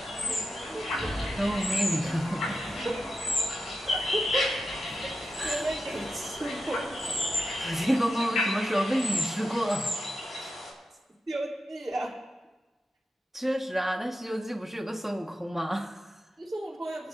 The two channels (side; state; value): both; normal; correlation 0.88